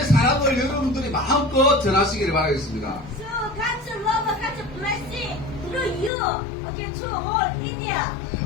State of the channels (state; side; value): drops out; right; at 6.1 s